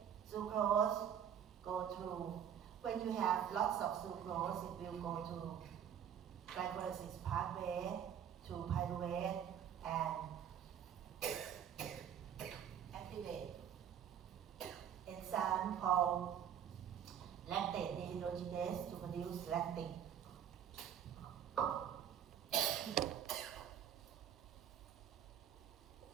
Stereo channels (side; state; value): left; quieter; 9.1 dB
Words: sucrose go through, when you have lots of sucrose, it will go to glycolysis pathway, to pyruvate, and activate enzyme called lactate dehydrogenase to produce lactic.